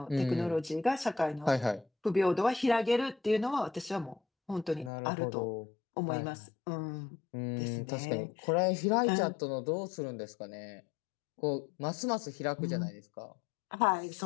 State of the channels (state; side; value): drops out; right; at 4.9 s